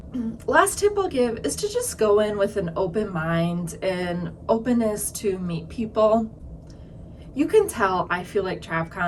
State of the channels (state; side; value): identical; both; correlation 1.00